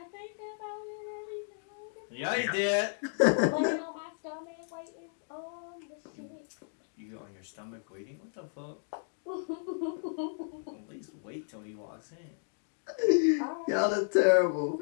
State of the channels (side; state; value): right; silent; digital silence